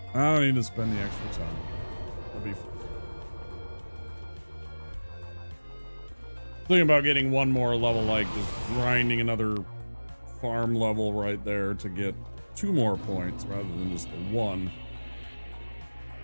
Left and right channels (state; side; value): inverted; both; correlation -1.00